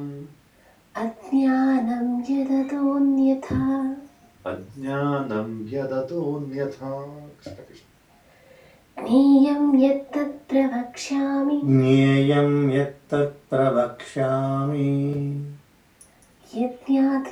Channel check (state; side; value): identical; both; correlation 1.00